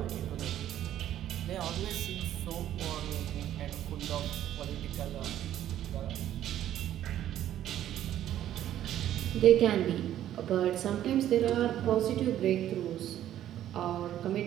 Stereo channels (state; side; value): quieter; left; 11.9 dB